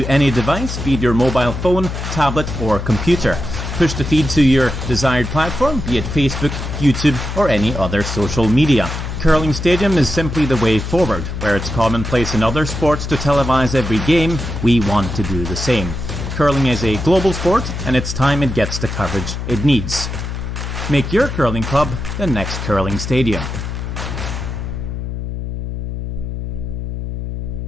any device, be it your mobile phone, tablet, or computer. Push the feed to your desired platform, be it Facebook, YouTube, or any other social media. Curling Stadium is simply the way forward. Where it's commonplace in other sports to televise every game, we want to do the same. Curling is a global sport, and it's time it gets the coverage it needs. Make your curling club the next Curling Stadium.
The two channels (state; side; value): noise; left; hum, 5 dB below the sound